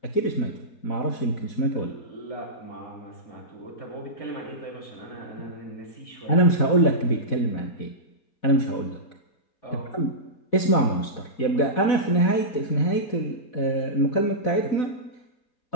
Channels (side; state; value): right; late; 4.0 ms